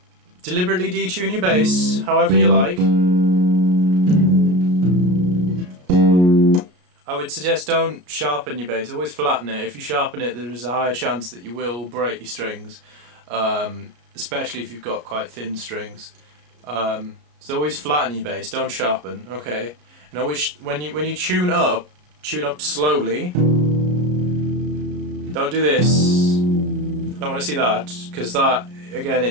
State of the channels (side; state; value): left; late; 34 ms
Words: Deliberately detune your bass however you like. I would suggest don't sharpen your bass, always flatten it. If you sharpen it, there is a higher chance that you will break your strings, especially if you've got quite thin strings. So always flatten your bass, don't sharpen, okay? And always, when you tune up slowly. Don't do this. Don't want to see that, because that, again,